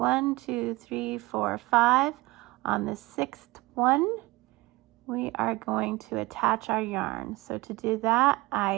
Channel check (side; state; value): left; quieter; 21.4 dB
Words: 2, 3, 4, 5. On the 6th one, we are going to attach our yarn. So to do that,